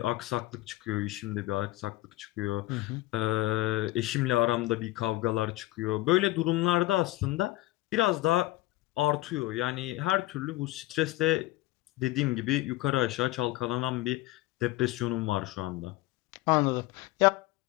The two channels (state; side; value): quieter; right; 17.8 dB